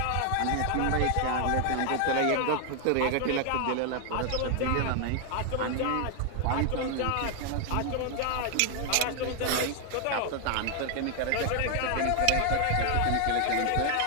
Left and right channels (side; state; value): both; different; correlation 0.00